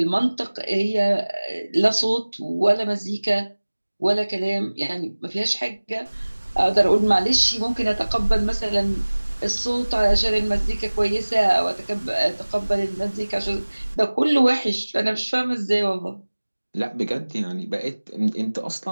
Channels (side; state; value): both; inverted; correlation -1.00